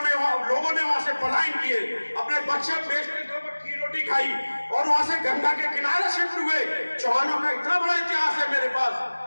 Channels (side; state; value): both; inverted; correlation -1.00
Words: लोगों ने वहां से पलायन किए, अपने बच्चे बेचने के ऊपर की रोटी खाई और वहां से गंगा के किनारे शिफ्ट हुए। चौहानों का इतना बड़ा इतिहास है मेरे पास,